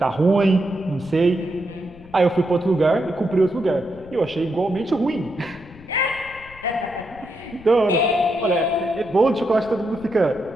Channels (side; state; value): left; noise; rumble, 21 dB below the sound